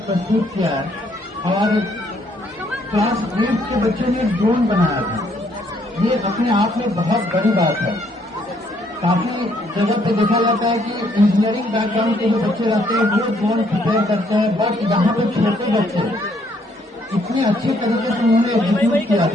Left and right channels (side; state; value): both; normal; correlation 0.68